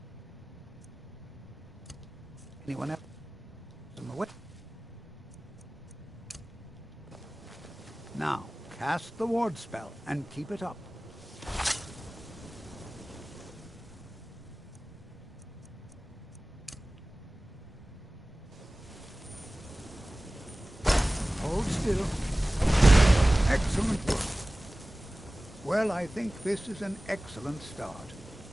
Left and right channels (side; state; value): both; normal; correlation 0.98